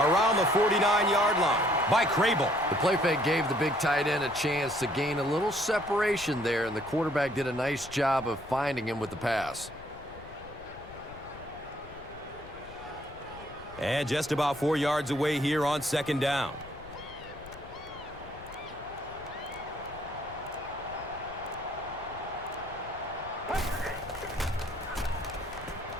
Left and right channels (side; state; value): left; noise; rumble, 18 dB below the sound